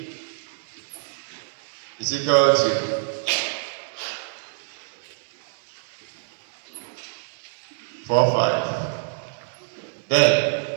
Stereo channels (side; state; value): left; silent; digital silence